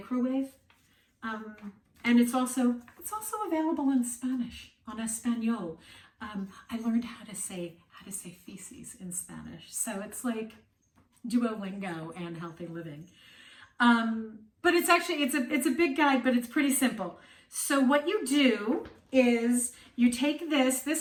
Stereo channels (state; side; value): identical; both; correlation 1.00